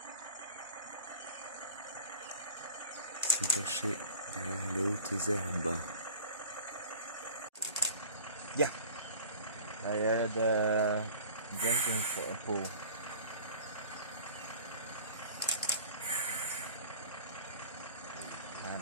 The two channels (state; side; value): inverted; both; correlation -0.43